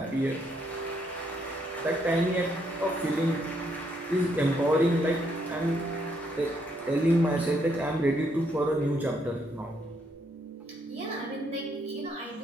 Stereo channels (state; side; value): normal; both; correlation 0.73